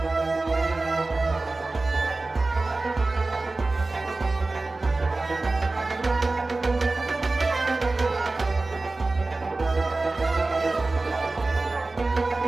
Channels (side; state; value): left; quieter; 3.3 dB